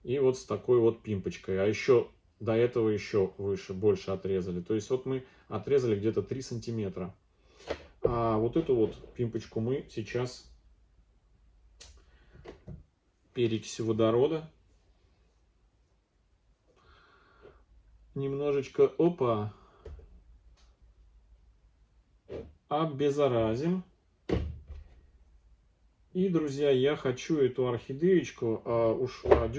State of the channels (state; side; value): identical; both; correlation 1.00